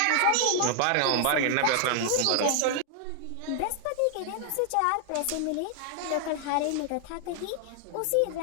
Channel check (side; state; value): both; different; correlation 0.00